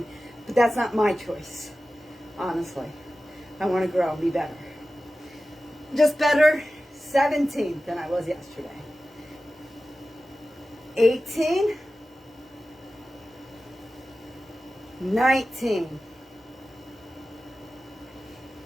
But that's not my choice, honestly. I want to grow and be better. Just better. 17 than I was yesterday. 18. 19.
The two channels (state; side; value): normal; both; correlation 0.95